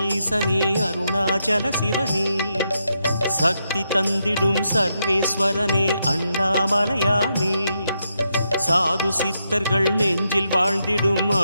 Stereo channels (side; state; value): both; inverted; correlation -0.82